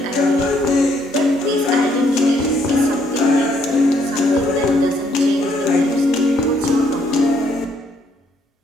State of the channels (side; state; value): both; normal; correlation 0.69